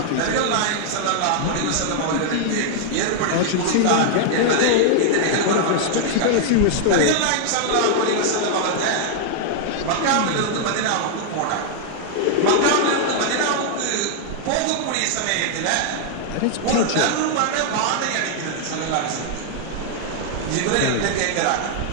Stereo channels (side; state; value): both; different; correlation -0.01